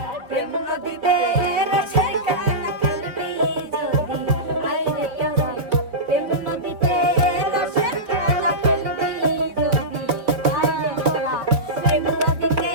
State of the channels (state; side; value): late; left; 4.5 ms